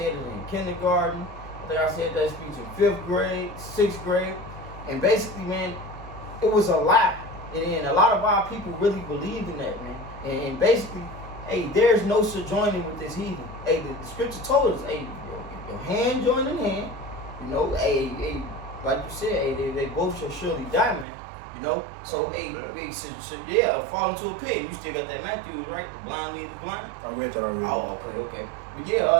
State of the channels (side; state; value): left; drops out; at 21.1 s